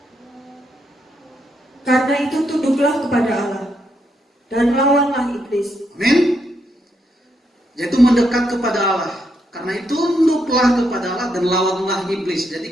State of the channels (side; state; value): both; normal; correlation 0.78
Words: Karena itu tunduklah kepada Allah dan lawanlah iblis. Amin. Yaitu mendekat kepada Allah. Karena itu tunduklah kepada Allah dan lawanlah iblis. Jadi